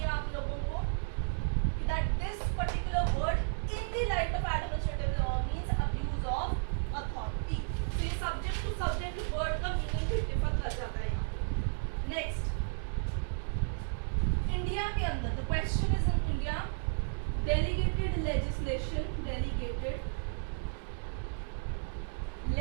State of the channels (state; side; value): silent; left; 56 dB below the other